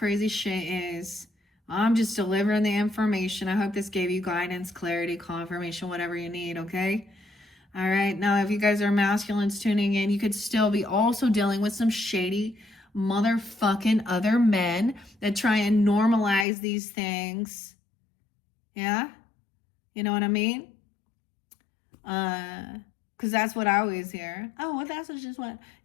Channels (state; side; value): drops out; right; at 16.4 s